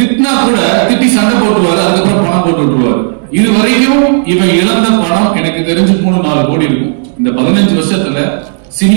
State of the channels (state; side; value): silent; left; digital silence